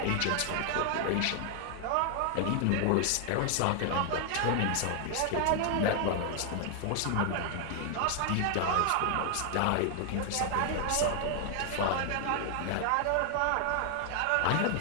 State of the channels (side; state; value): both; different; correlation 0.00